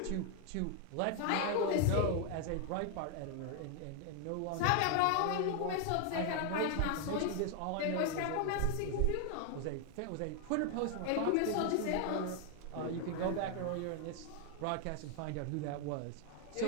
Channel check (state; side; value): different; both; correlation 0.00